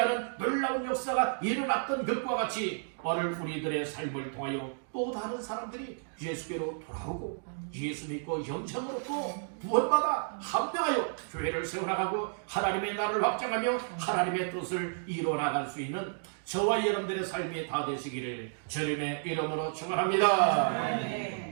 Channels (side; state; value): left; silent; digital silence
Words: 놀라운 역사가 일어났던 것과 같이 오늘 우리들의 삶을 통하여 또 다른 사람들이 예수께로 돌아오고 예수 믿고 영생으로 또 구원받아 합병하여 교회를 세워나가고 하나님의 나라를 확장하며 하나님의 뜻을 이루어나갈 수 있는 저와 여러분들의 삶이 다 되시기를 주님의 이름으로 축원합니다.